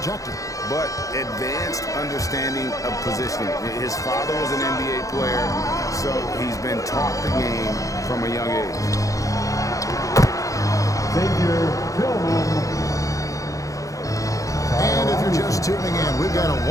But advanced understanding of positioning. His father was an NBA player, so he's been taught the game from a young age. And if you're just tuning in, we've got a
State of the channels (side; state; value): right; late; 0.16 ms